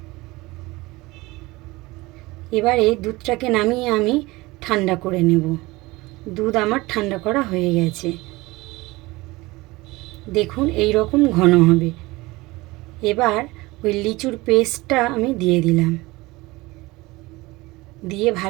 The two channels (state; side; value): quieter; left; 21.3 dB